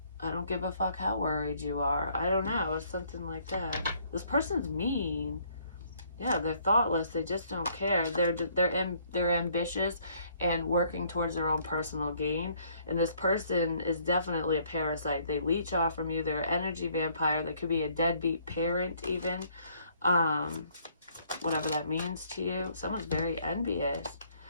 I don't give a fuck how worried you are. I don't know. It's something like that. This person's mean. Yeah, they're thoughtless. They just don't care. They're ambitious and working towards their own personal gain. And this person is definitely a parasite. They leech off from you. They're an energy vampire. They could be a deadbeat parent even. Whatever that means to you. Someone's very envious.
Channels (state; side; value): inverted; both; correlation -0.64